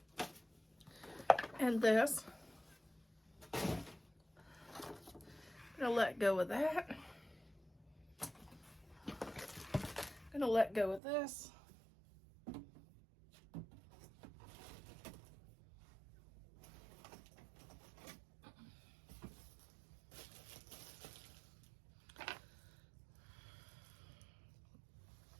and this. I'm going to let go of that. I'm going to let go of this.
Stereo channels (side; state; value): left; drops out; at 11.0 s